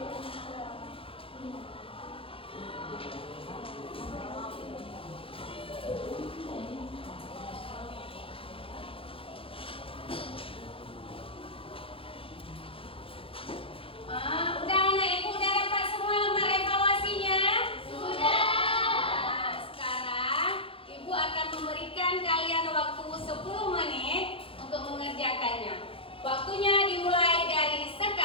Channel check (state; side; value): late; right; 0.27 ms